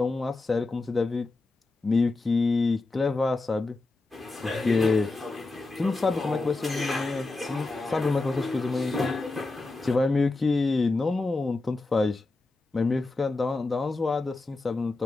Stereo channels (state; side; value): quieter; right; 3.3 dB